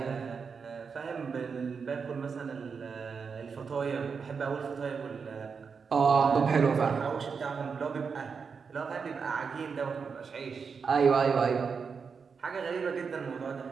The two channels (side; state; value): left; quieter; 5.7 dB